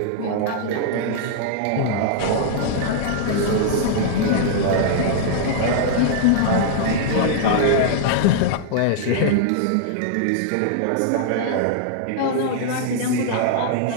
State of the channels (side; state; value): both; different; correlation -0.01